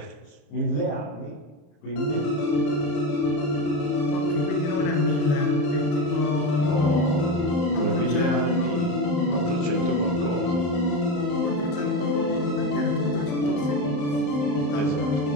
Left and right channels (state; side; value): late; right; 34 ms